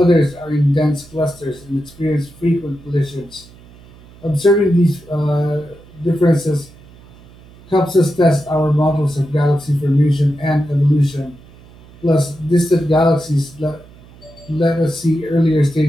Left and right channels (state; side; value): noise; right; hum, 23 dB below the sound